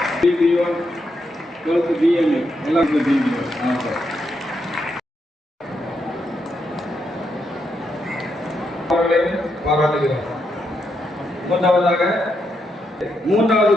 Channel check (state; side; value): normal; both; correlation 0.81